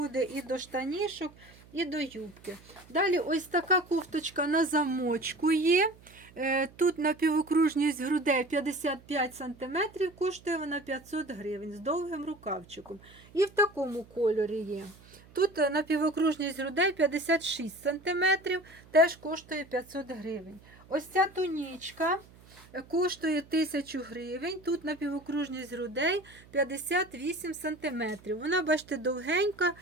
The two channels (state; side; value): noise; right; hum, 24 dB below the sound